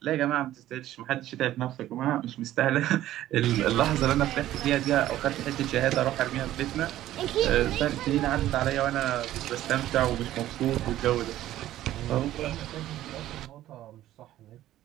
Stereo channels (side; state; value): left; quieter; 13.7 dB